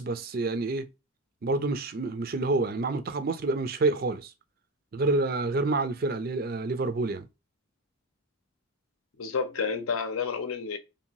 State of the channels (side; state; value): both; normal; correlation 0.13